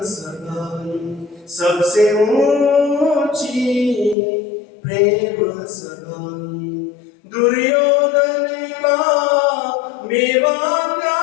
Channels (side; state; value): right; drops out; at 4.2 s